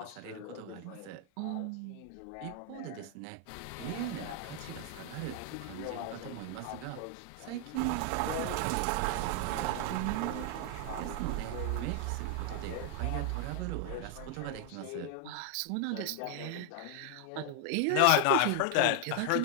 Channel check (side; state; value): both; different; correlation 0.00